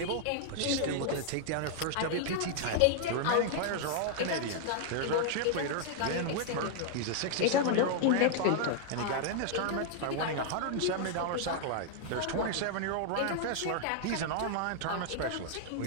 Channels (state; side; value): different; both; correlation -0.01